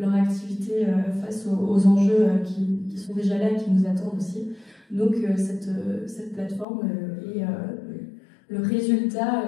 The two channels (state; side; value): drops out; right; at 6.7 s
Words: activité face aux enjeux qui sont déjà là et qui nous attendent aussi. Donc cette plateforme est le